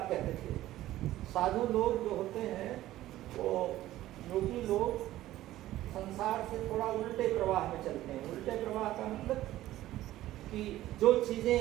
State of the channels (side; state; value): left; quieter; 14.9 dB